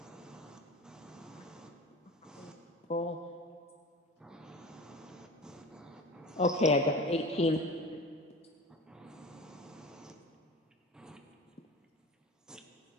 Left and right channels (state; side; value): normal; both; correlation 0.33